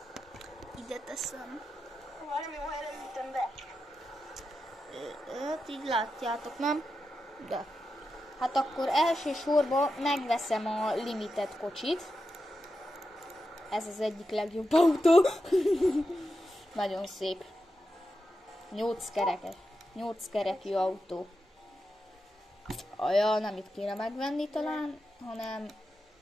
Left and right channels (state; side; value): normal; both; correlation 0.89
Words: ide teszem. Valami helyre ütöm be. Hát így látjátok, nem? De. Hát akkor elsősorban megveszem a limited kocsit. Ez az egyik legjobb autó. Nagyon szép. 8 kerekes. 8 kerekű autó. Ja, nem itt kéne megvenni talán, hanem...